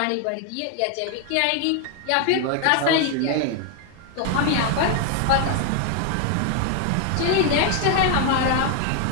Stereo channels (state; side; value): different; both; correlation 0.00